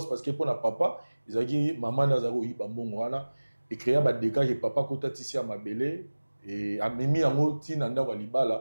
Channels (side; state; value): both; inverted; correlation -1.00